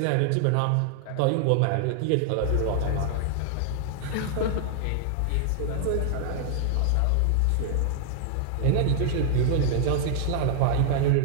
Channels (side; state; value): both; different; correlation -0.01